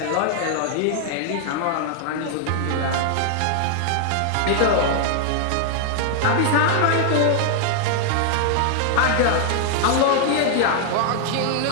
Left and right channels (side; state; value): both; different; correlation 0.00